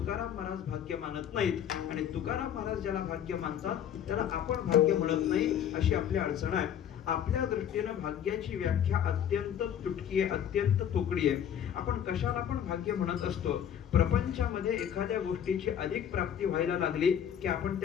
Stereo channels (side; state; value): right; quieter; 9.3 dB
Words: महाराज भाग्य मानत नाहीत आणि तुकाराम महाराज ज्याला भाग्य मानतात त्याला आपण भाग्य म्हणत नाही अशी आपली अडचण आहे। आपल्या दृष्टीने भाग्याची व्याख्या अत्यंत तुटकी आहे अत्यंत तोकडी आहे। आपण कशाला पण भाग्य म्हणत असतो प्रपंचामध्ये एखाद्या गोष्टीची अधिक प्राप्ती व्हायला लागली की आपण